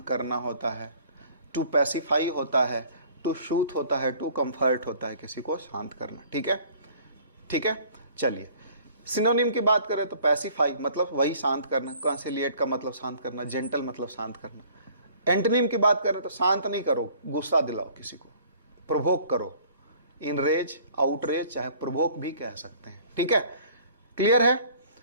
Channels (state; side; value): inverted; both; correlation -0.54